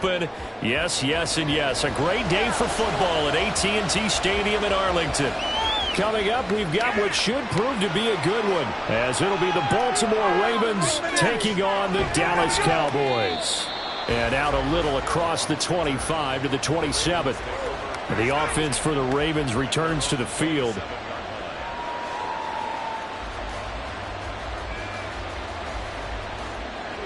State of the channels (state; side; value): identical; both; correlation 1.00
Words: Yes, yes, and yes. A great day for football at AT&T Stadium in Arlington. Coming up, we've got what should prove to be a good one, as it'll be the Baltimore Ravens taking on the Dallas Cowboys. And out a little across the 25 to the 27th. The offense for the Ravens returns to the field.